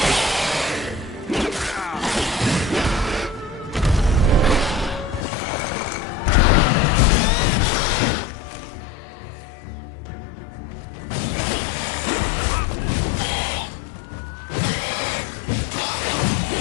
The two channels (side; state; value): right; drops out; at 5.2 s